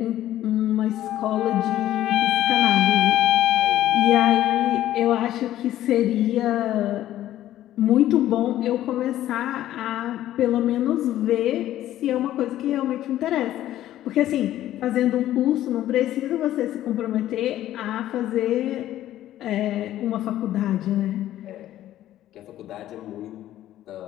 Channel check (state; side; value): quieter; right; 13.2 dB